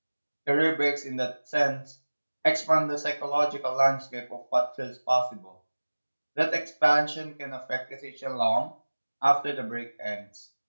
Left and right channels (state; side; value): inverted; both; correlation -1.00